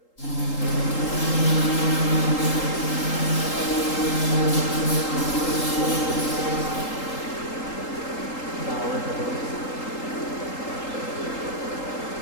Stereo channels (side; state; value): right; late; 3.8 ms